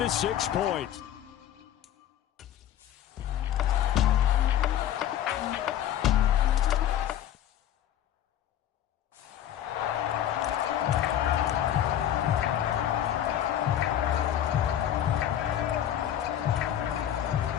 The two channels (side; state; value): right; quieter; 11.0 dB